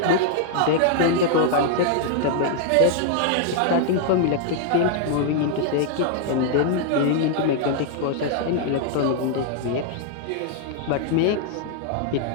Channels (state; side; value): different; both; correlation -0.01